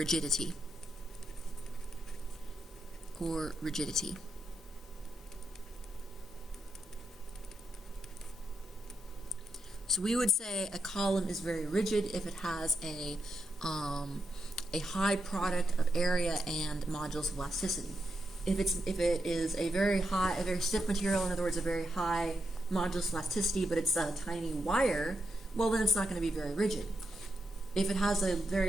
So we would say a column is very rigid if it has a high product of area and modulus of elasticity. If it is a very stiff material, in other words, a very high modulus of elasticity, but it's a tiny wire, well then it's not going to be very rigid. If it has a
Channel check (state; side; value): normal; both; correlation 0.84